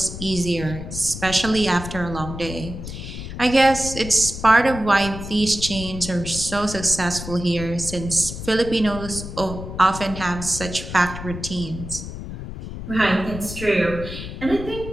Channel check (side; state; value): left; noise; rumble, 9 dB below the sound